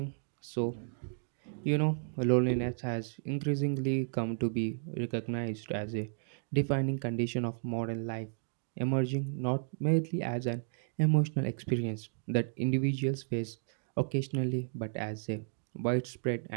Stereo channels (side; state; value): left; silent; digital silence